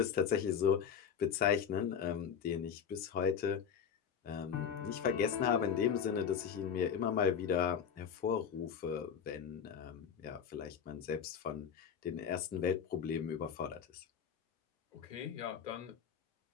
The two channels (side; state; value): right; quieter; 7.5 dB